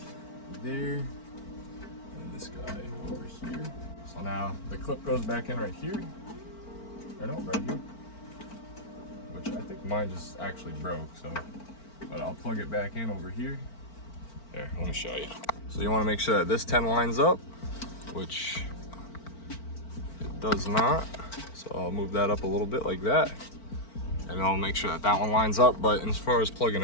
there. And this guy over here. So now the clip goes back in right here. Or no, right here. Which I think mine just actually broke, so. But I'll plug it back in over here. There, let me show you. So you want to make sure that this 10 lines up, which it does not. So I'll move that up a little bit like that. And I'll make sure that that one lines up. But as far as plugging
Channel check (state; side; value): late; right; 4.4 ms